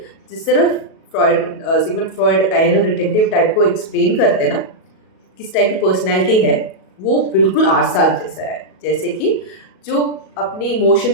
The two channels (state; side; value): late; right; 37 ms